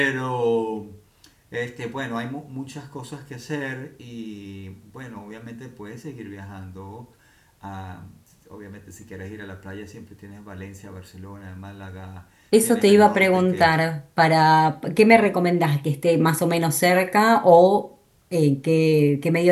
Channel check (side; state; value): both; identical; correlation 1.00